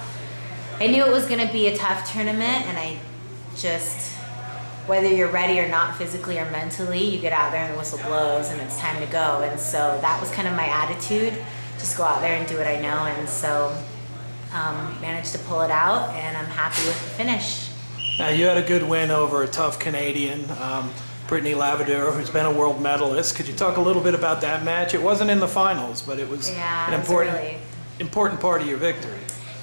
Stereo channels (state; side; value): inverted; both; correlation -1.00